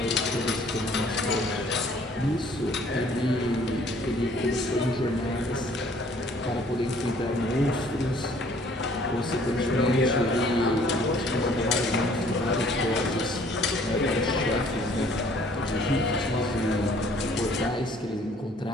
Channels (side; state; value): both; normal; correlation 0.58